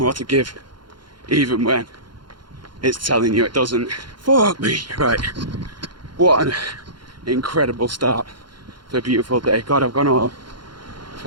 to give, even when it's telling you it doesn't. Fuck me. Right. What an incredible start to a beautiful day. God, I've gone all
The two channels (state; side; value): late; left; 0.72 ms